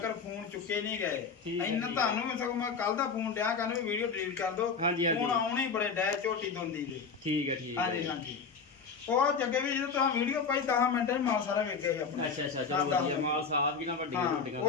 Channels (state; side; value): quieter; right; 5.4 dB